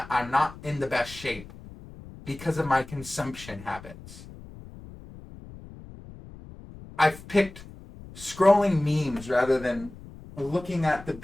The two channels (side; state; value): left; noise; rumble, 17 dB below the sound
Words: not in the best shape because of my consumption habits. I've picked scrolling memes rather than looking at the